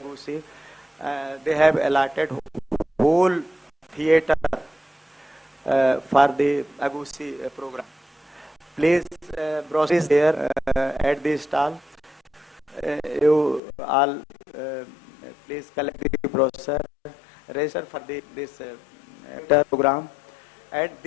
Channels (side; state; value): right; drops out; at 13.6 s